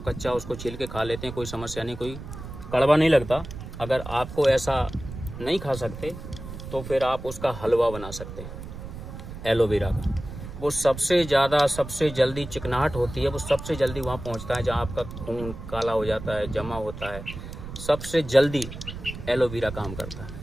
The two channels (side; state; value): right; noise; rumble, 11 dB below the sound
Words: कच्चा उसको छील के खा लेते हैं, कोई समस्या नहीं, कोई कड़वा नहीं लगता। अगर आपको ऐसा नहीं खा सकते तो फिर आप उसका हलवा बना सकते हैं एलोवेरा का। वो सबसे जल्दी चिकनाहट होती है, वो सबसे जल्दी वहाँ पहुँचता है जहाँ आपका खून काला हो जाता है, जमा होता है, सबसे जल्दी एलोवेरा काम करता